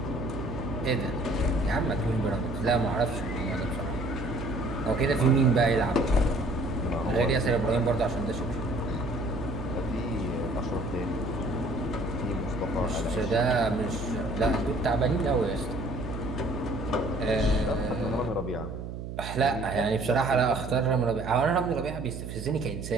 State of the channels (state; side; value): noise; right; hum, 8 dB below the sound